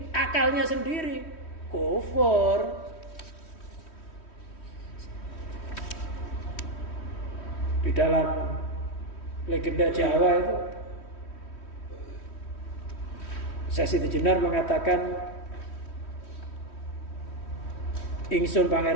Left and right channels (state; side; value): late; right; 3.1 ms